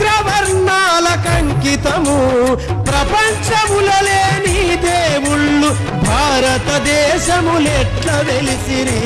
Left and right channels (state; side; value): identical; both; correlation 1.00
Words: కంకితము ప్రపంచములో లేని దేవుళ్ళు భారతదేశములెట్ల వెలిసిరి